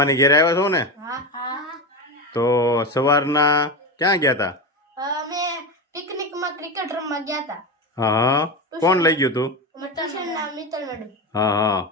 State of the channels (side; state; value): both; normal; correlation 0.19